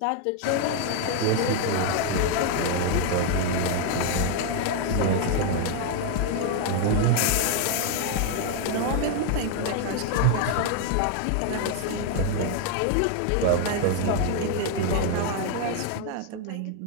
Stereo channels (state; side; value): different; both; correlation 0.00